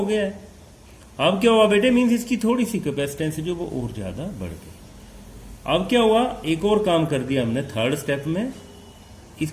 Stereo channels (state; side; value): identical; both; correlation 1.00